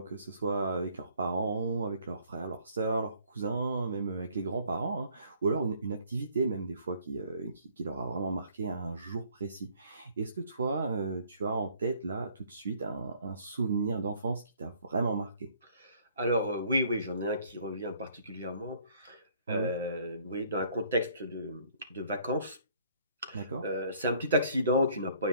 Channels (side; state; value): both; inverted; correlation -0.60